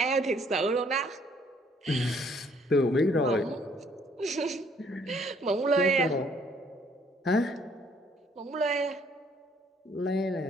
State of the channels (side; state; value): both; normal; correlation 0.63